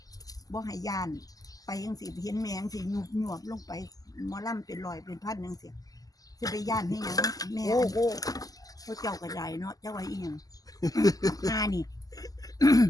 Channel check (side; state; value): right; late; 0.17 ms